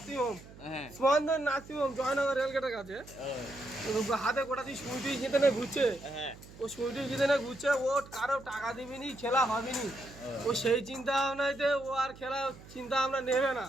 হোম, হ্যাঁ। স্পন্দন নার্সিং হোম জয়নগর রেলগেটের কাছে, হাতে গোটা দিয়ে সুইটি জিতে নিয়ে ঘুরছে। হ্যাঁ। ও সুইটি জিতে নিয়ে ঘুরছে, ও কারো টাকা দিবিনি, খেলা হবেনি। ও সেই চিন্তা ভাবনাতে ও আর খেলা চিন্তা ভাবনা নেবে না।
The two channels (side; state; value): right; noise; hum, 19 dB below the sound